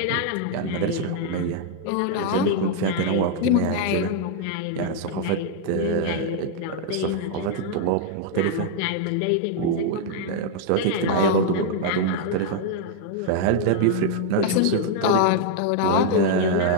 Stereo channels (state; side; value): different; both; correlation 0.00